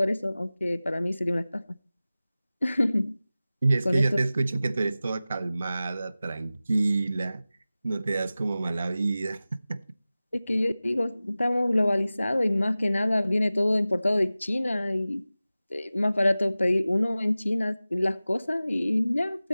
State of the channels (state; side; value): inverted; both; correlation -0.96